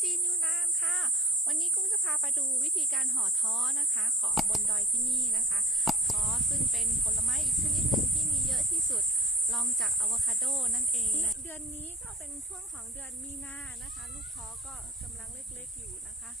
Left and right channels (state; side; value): normal; both; correlation 0.43